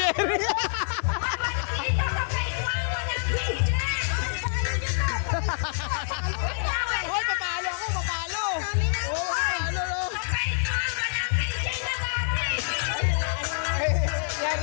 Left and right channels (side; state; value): right; silent; digital silence